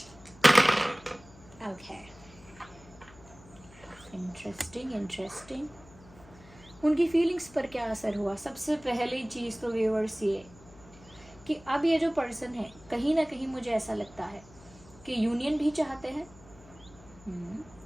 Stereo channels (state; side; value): noise; left; hum, 22 dB below the sound